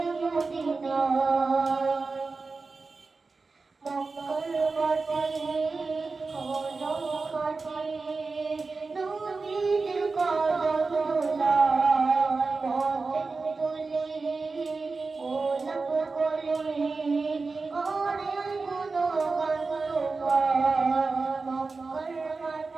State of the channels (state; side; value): quieter; left; 4.1 dB